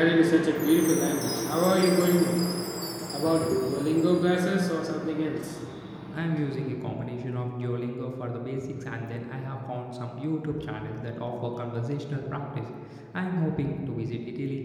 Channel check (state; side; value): identical; both; correlation 1.00